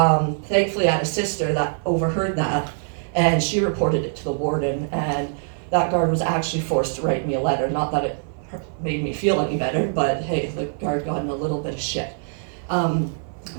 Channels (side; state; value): left; silent; 63 dB below the other